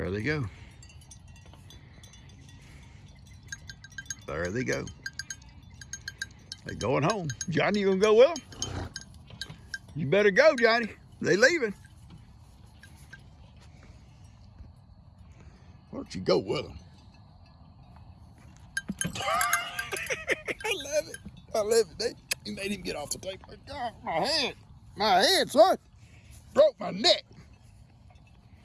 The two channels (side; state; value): both; identical; correlation 1.00